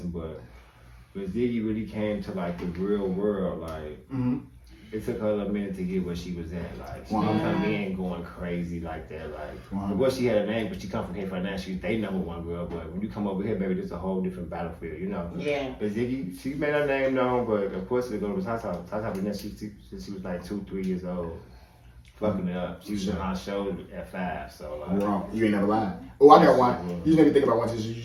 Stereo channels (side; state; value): both; identical; correlation 1.00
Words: But Ziggy really came to like the real world, like it took her a minute to get where she was at. Like she didn't come in going crazy like that. Like of course she had a name, but she come from Cape Fernandez. She's they number one girl. But when you come over here, baby, it's a whole different battlefield, Yeah. But Ziggy, she made her name known, but of course it goes to Tata. Tata been there since she was like 2-3 years old. Fucking it up. She was on our show at 5, so like. Wrong. You ain't never lied. Oh, I got one. You just made me think about one since you